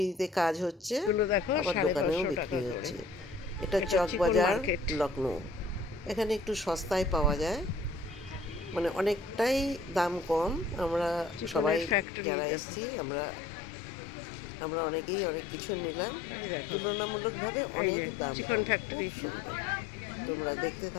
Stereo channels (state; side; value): drops out; right; at 12.1 s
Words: কাজ হচ্ছে, আবার দোকানেও বিক্রি হচ্ছে। এটা চকবাজার লখনৌ। এখানে একটু সস্তায় পাওয়া যায়, মানে অনেকটাই দাম কম। আমরা সবাই যারা এসেছি আমরা অনেকেই অনেক কিছু নিলাম, তুলনামূলকভাবে অনেক দাম, খুব সুন্দর। তোমরা দেখতে